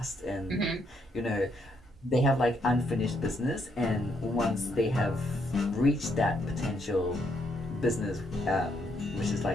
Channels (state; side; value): normal; both; correlation 0.74